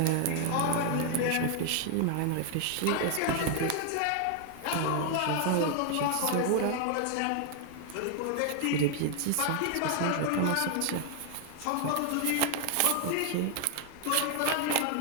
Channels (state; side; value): different; both; correlation 0.00